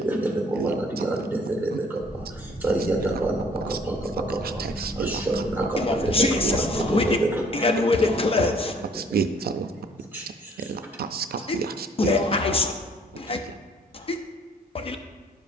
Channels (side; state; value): both; normal; correlation 0.59